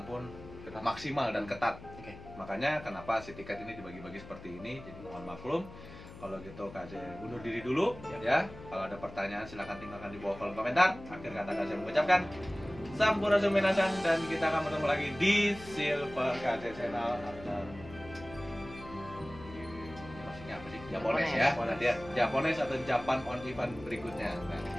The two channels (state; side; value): noise; left; hum, 16 dB below the sound